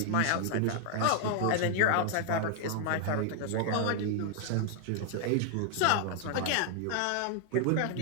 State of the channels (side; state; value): both; different; correlation 0.00